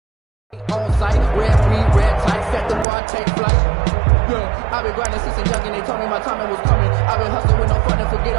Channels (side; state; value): left; drops out; at 2.9 s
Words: On site, red breed, red tight, set the bar, take flight. Yeah, I've been grinding since a young and they told me my timing was coming. I've been hustling with no fun and forget